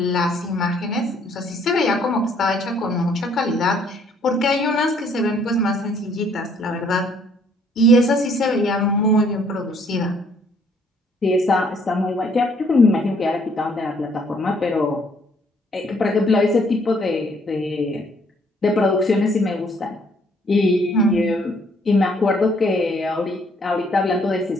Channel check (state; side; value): normal; both; correlation 0.65